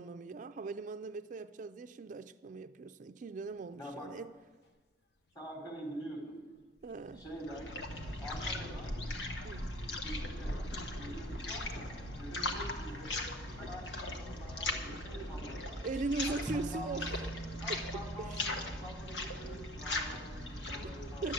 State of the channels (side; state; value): both; normal; correlation 0.45